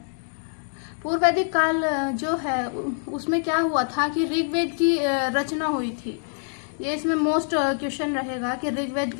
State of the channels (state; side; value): silent; right; 62 dB below the other